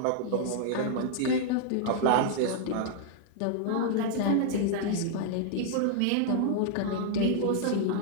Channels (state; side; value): different; both; correlation -0.01